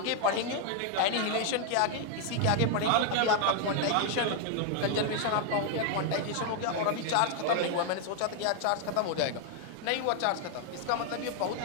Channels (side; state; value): both; different; correlation 0.00